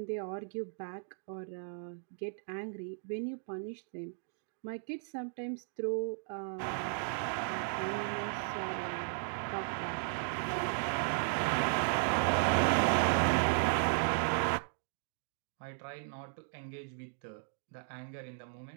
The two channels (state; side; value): silent; left; digital silence